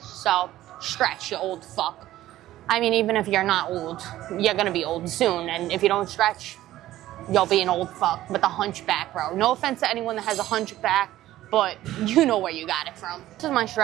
So stretch, you old fuck. I mean, even if you're not old, you're gonna be old soon, and if you don't stretch, you'll be an old fuck with a hunchback, bro. No offense to anyone that has a hunchback, but you know where you got it from. This is my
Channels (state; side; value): quieter; left; 14.6 dB